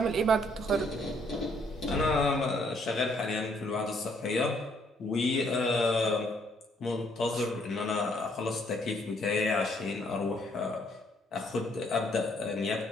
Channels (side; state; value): both; normal; correlation 0.68